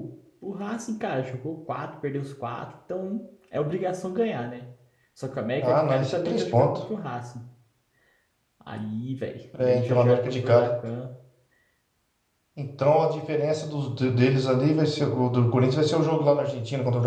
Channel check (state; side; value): identical; both; correlation 1.00